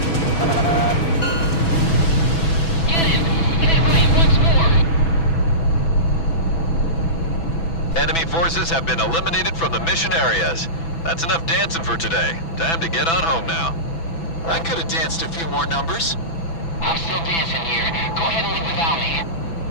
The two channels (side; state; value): right; late; 6.0 ms